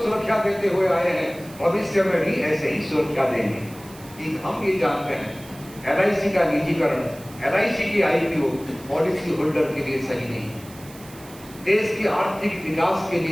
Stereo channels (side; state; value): right; noise; hiss, 20 dB below the sound